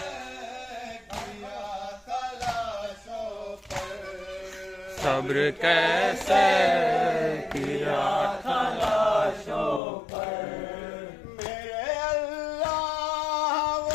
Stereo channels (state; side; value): drops out; right; at 9.8 s